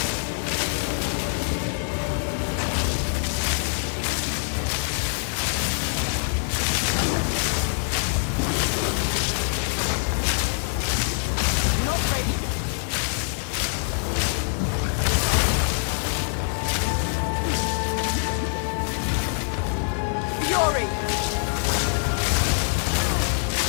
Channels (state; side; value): silent; right; 62 dB below the other